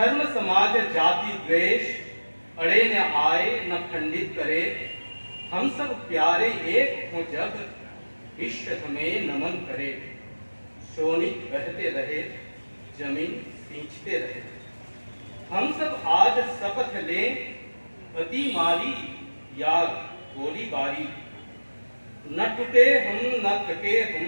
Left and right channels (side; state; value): both; inverted; correlation -1.00